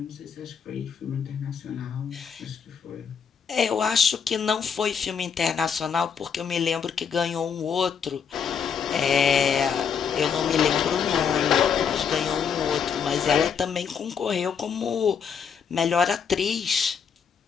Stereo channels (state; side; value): quieter; right; 6.8 dB